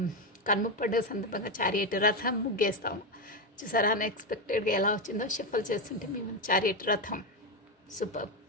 కన్ముప్పడ్డ సందర్భంగా చారియట్ రథం ముగ్గేస్తాము. చూసారా, అన్ఎక్స్పెక్టెడ్గా ఎలా వచ్చిందో షఫల్ చేస్తుంటే మేము చారియట్ రథం. సూపర్,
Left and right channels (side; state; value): both; normal; correlation 0.10